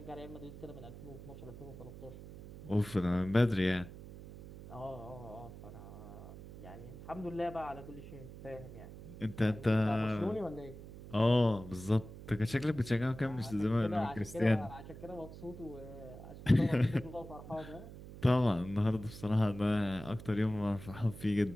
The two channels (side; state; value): right; noise; hum, 14 dB below the sound